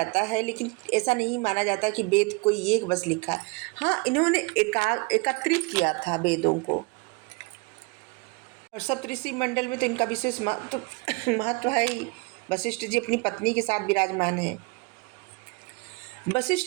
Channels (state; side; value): quieter; left; 28.5 dB